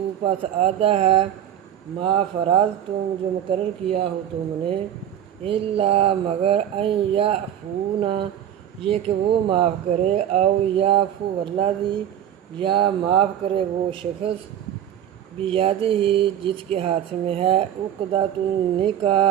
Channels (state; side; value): quieter; left; 10.3 dB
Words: پس آدھا ہے ما فرضتم جو مقرر کیا ہو تم نے الا مگر ان یعفون یہ کہ وہ معاف کرے او یعفو الذی یا معاف کرے وہ شخص بیدہ جس کے ہاتھ میں ہے عقدۃ